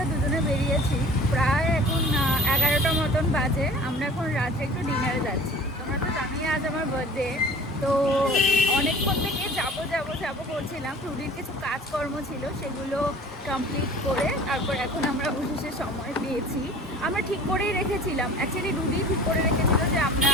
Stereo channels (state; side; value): normal; both; correlation 0.44